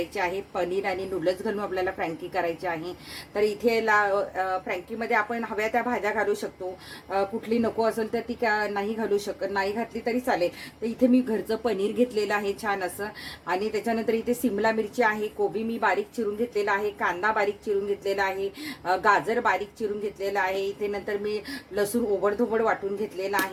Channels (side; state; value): both; identical; correlation 1.00